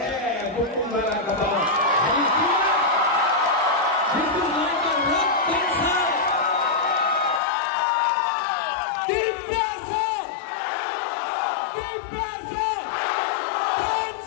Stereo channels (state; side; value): drops out; right; at 7.4 s